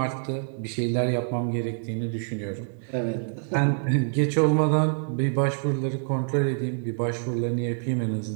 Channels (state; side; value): silent; left; 61 dB below the other